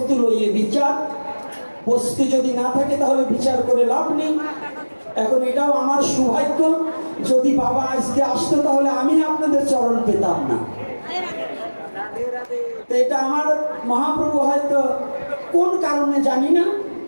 লইয়ে বিচার। বস্তু যদি না থাকে তাহলে বিচার করে লাভ নেই। এখন এটাও আমার সৌভাগ্য, যদি বাবা আজকে আসতো তাহলে আমি আপনাদের চরণ পেতাম না। এটা আমার মহাপ্রভু হয়তো কোন কারণে জানি না,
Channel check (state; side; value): inverted; both; correlation -1.00